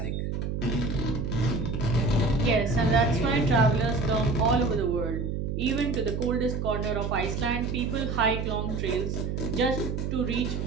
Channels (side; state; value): right; noise; hum, 2 dB below the sound